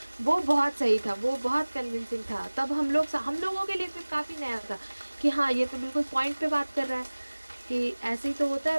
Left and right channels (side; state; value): both; inverted; correlation -1.00